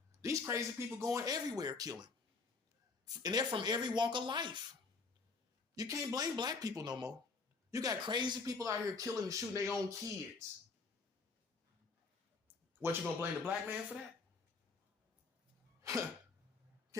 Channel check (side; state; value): right; quieter; 4.3 dB